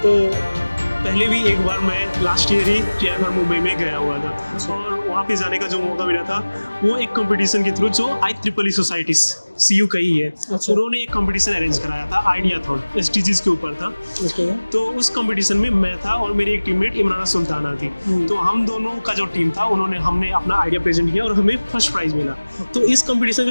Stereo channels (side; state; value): both; inverted; correlation -1.00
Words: तो पहले भी एक बार मैं लास्ट ईयर ही टीआईएफआर मुंबई में गया हुआ था और वहाँ पे जाने का जो मौका मिला था वो एक कंपटीशन के थ्रू जो IEEE सोसाइटी CU का ही है, अच्छा। उन्होंने एक कंपटीशन अरेंज कराया था, आइडियाथॉन SDGs के ऊपर था। तो उस कंपटीशन में मैं था और मेरी एक टीममेट इमराना सुल्ताना थी। तो हम दोनों का जो टीम था हमने अपना आइडिया प्रेजेंट किया और हमें फर्स्ट प्राइज मिला। तो इस कंपटीशन